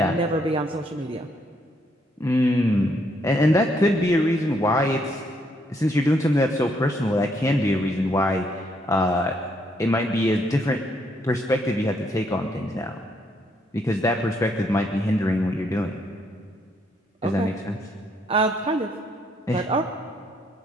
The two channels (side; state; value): both; normal; correlation 0.72